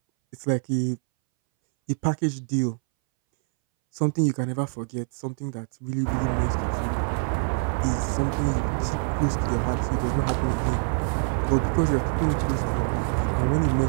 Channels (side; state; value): left; silent; 62 dB below the other